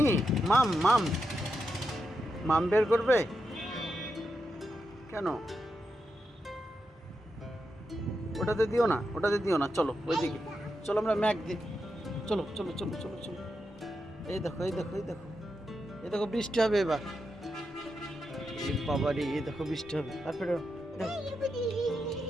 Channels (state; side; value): normal; both; correlation 0.86